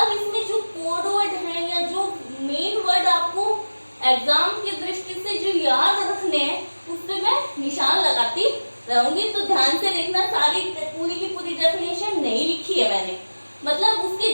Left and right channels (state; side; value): inverted; both; correlation -1.00